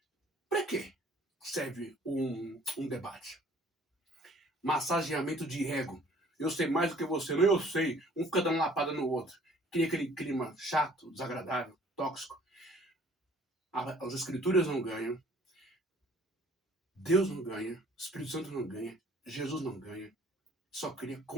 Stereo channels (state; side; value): normal; both; correlation 0.55